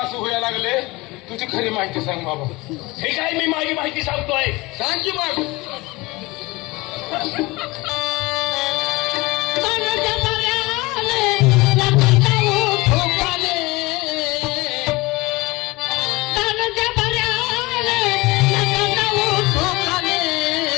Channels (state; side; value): quieter; right; 22.6 dB